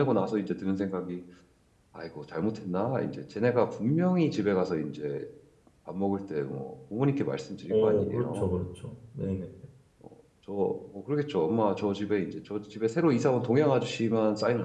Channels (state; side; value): identical; both; correlation 1.00